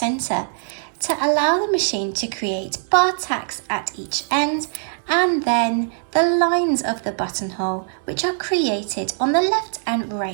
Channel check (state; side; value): silent; left; digital silence